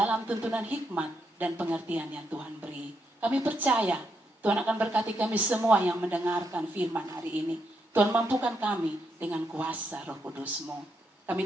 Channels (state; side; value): normal; both; correlation 0.80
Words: tuntunan hikmat dan pengertian yang Tuhan beri. Kami percaya Tuhan akan berkati kami semua yang mendengarkan firman hari ini. Tuhan mampukan kami dengan kuasa Roh Kudus-Mu.